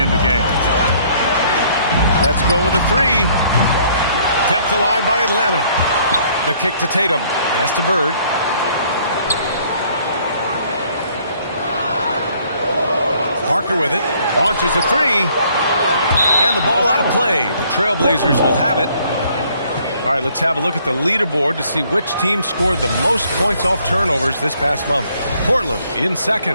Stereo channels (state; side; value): inverted; both; correlation -0.62